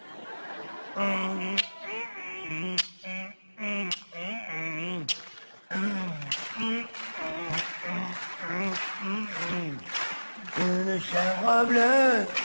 une chèvre bleue,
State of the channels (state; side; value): inverted; both; correlation -1.00